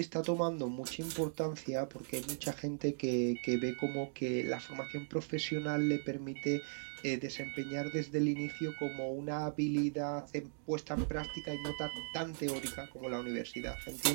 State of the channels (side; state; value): left; silent; digital silence